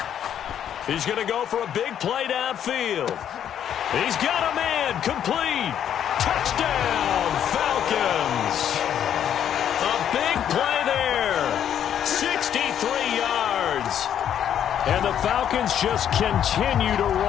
He's going to go for a big play downfield. He's got a man. Complete. Touchdown, Falcons. A big play there. 63 yards. And the Falcons just continue to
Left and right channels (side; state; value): right; quieter; 9.6 dB